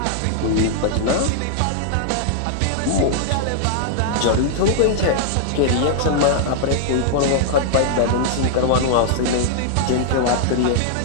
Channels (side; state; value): both; different; correlation -0.01